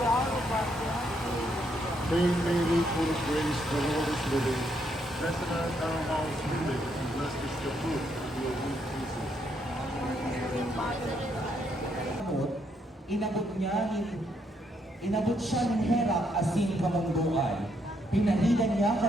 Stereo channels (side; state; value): both; normal; correlation 0.75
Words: Hail Mary, full of grace, the Lord is with thee. Blessed art thou amongst women, and blessed is the fruit of your womb, Jesus. Inabot siya ng Herak asin kamunduan. Pinahilan niya